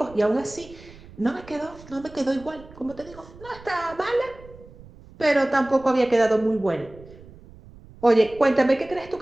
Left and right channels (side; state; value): right; noise; rumble, 21 dB below the sound